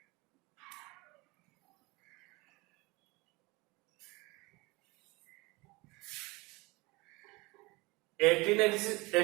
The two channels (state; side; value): quieter; left; 24.2 dB